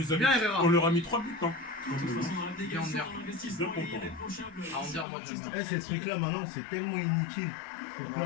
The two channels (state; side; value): drops out; right; at 5.1 s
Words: a Bien, mis. Herrera. On leur a mis 3 buts, hein. De toute façon, dans l'abnégation, Bien, Ander. l'investissement Bien est content. irréprochable. Ah, Ander, moi, j'aime bien. Eh, ces trucs-là, maintenant, c'est tellement inutile. Pour